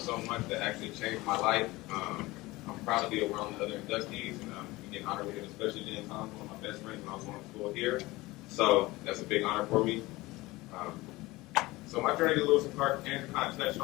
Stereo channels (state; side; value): quieter; right; 20.4 dB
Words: much that actually changed my life. I'm proud to be around the other inductees and getting honored with it, especially Jen Thompson, one of my best friends when I was going to school here. So that's a big honor for me. So my journey to Lewis and Clark, Andrew kind of touched